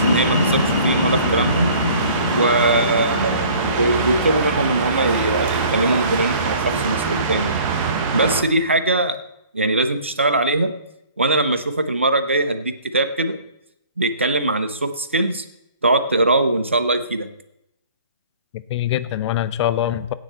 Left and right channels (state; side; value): inverted; both; correlation -0.50